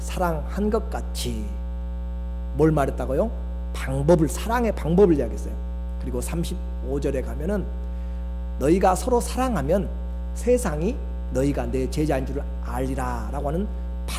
사랑한 것 같이. 뭘 말했다고요? 방법을, 사랑의 방법을 이야기했어요. 그리고 35절에 가면은 너희가 서로 사랑하면 세상이 너희가 내 제자인 줄 알리라 라고 하는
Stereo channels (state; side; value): identical; both; correlation 1.00